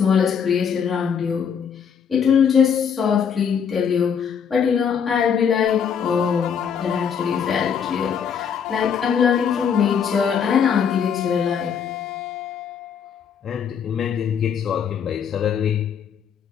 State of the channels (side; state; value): right; quieter; 7.3 dB